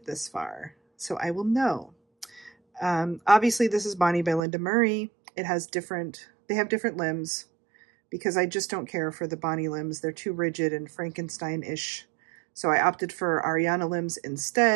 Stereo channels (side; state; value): left; drops out; at 4.4 s